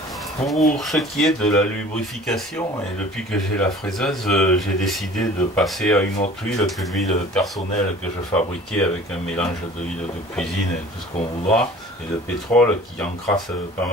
Pour ce qui est de la lubrification, et depuis que j'ai la fraiseuse, j'ai décidé de passer à une autre huile que l'huile personnelle que je fabriquais avec un mélange d'huile de cuisine et tout ce qu'on voudra, et de pétrole qui encrasse pas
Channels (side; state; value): both; normal; correlation 0.46